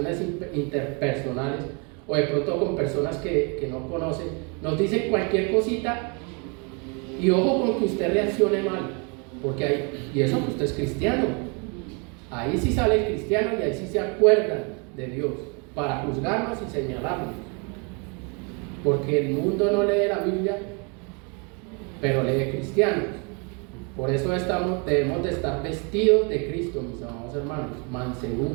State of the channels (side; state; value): left; quieter; 34.1 dB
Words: interpersonales o de pronto con personas que no conocen, nos dicen cualquier cosita y ojo con que usted reaccione mal. Porque ahí, y eso que usted es cristiano, ahí sí sale el cristiano y ahí sí se acuerdan de Dios para juzgarnos y señalarnos. Porque el mundo no lee la Biblia, pero lee cristianos. Por eso debemos de estar vestidos de Cristo, mis amados hermanos.